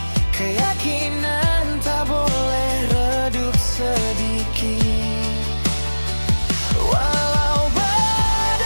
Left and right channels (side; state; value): both; inverted; correlation -1.00